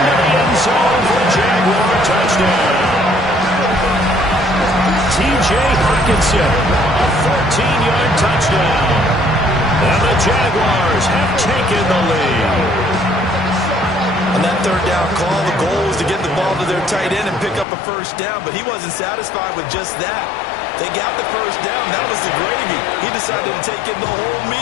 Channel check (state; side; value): drops out; right; at 17.7 s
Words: the end zone for a Jaguar touchdown. T.J. Hockenson, a 14-yard touchdown. And the Jaguars have taken the lead. On that 3rd down call, the goal was to get the ball to their tight end and pick up a 1st down, but he wasn't satisfied with just that. They got the 1st down. That was the gravy. He decided to take in the whole